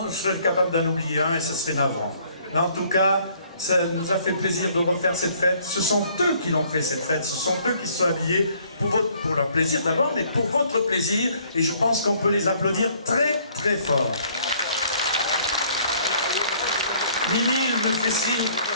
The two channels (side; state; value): both; inverted; correlation -0.61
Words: serait capable d'en oublier un et ce serait navrant. Mais en tout cas, ça nous a fait plaisir de refaire cette fête. Ce sont eux qui l'ont fait cette fête, ce sont eux qui se sont habillés pour leur plaisir d'abord, mais pour votre plaisir. Et je pense qu'on peut les applaudir très très fort. Mimi, il me fait signe